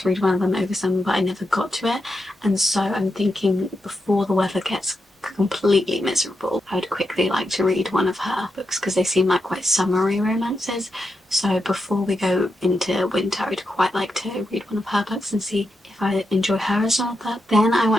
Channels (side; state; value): both; normal; correlation 0.86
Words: read one of them over summer, but I never got to it, and so I'm thinking before the weather gets completely miserable, I would quickly like to read one of her books because they seem like quite summery romances. So before we go into winter, I'd quite like to read one of her books and see if I enjoy her as an author. Then I